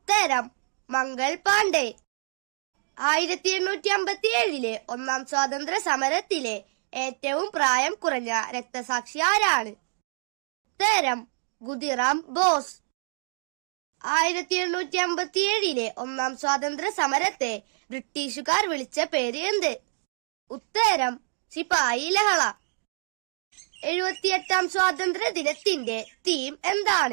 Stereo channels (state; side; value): silent; left; digital silence